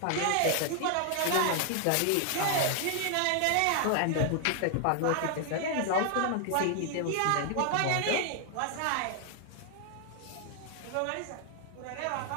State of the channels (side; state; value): both; different; correlation 0.00